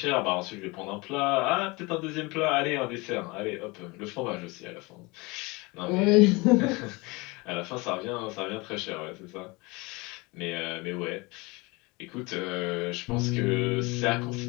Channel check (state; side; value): quieter; right; 25.3 dB